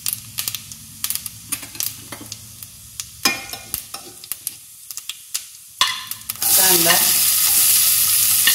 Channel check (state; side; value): identical; both; correlation 1.00